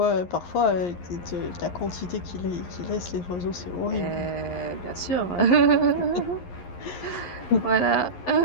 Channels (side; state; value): right; late; 11 ms